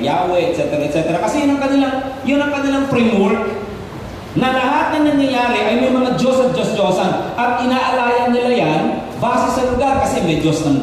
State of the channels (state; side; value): identical; both; correlation 1.00